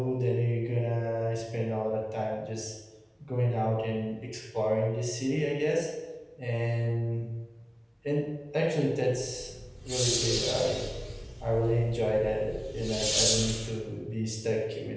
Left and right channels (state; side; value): identical; both; correlation 1.00